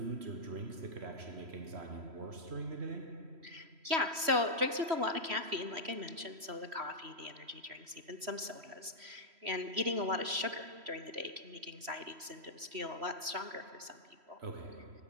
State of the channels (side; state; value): left; late; 3.1 ms